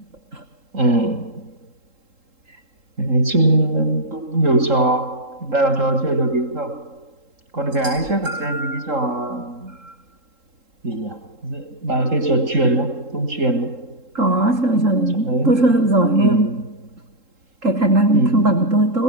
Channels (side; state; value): left; late; 3.7 ms